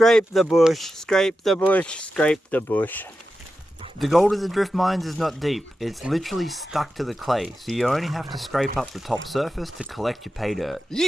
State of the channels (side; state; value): both; normal; correlation 0.91